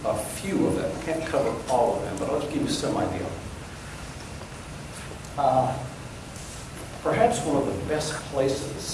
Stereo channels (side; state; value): both; identical; correlation 1.00